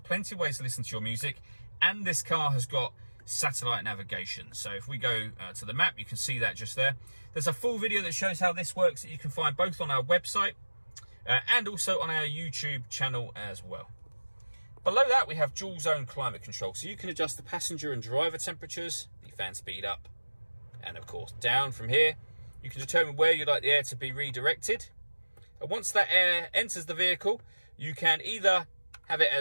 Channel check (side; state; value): both; inverted; correlation -1.00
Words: of ways to listen to your music. And this car has got satellite navigation. So if we go to the map, you can see that just there. There's a full video that shows how this works that you can find both on our website and also on our YouTube channel as well. Below that, we have dual zone climate control. So you can adjust the passenger and driver temperatures, the fan speed up, and of course down from here. You can determine where you'd like the air to be redirected. And once that air enters the vehicle, you can either have it